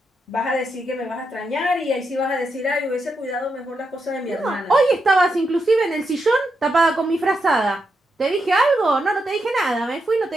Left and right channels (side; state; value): both; normal; correlation 0.84